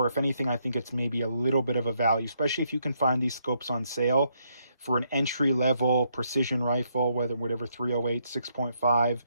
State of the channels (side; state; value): both; inverted; correlation -0.75